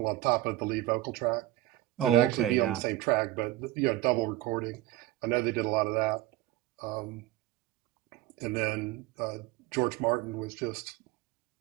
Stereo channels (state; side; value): quieter; left; 15.7 dB